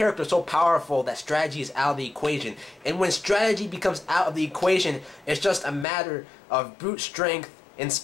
so powerful that strategy is out of the equation. And when strategy becomes out of the equation, it's just a matter of brute strength and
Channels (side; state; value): right; drops out; at 5.9 s